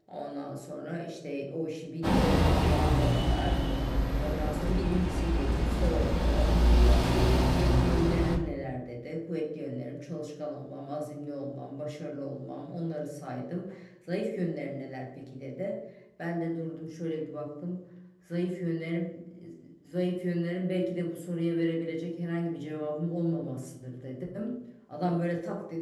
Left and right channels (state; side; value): identical; both; correlation 1.00